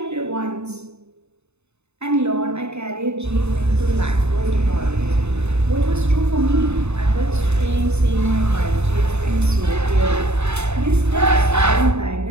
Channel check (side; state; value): left; late; 0.81 ms